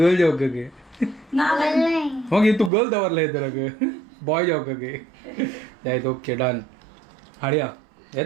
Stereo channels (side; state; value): left; drops out; at 2.7 s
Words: जेवका गे मग तू गर्ल दवरला येदराक बॉय जेवका गे जायत ओके डन हाडया